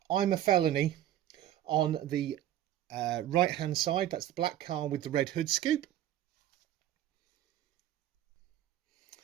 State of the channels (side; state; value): left; quieter; 12.3 dB